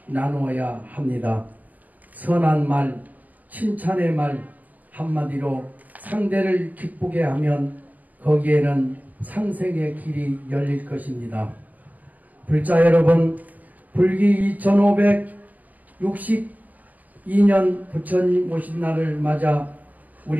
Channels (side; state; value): left; late; 0.078 ms